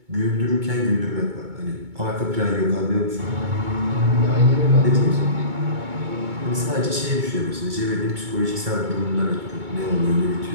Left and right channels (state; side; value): late; left; 2.2 ms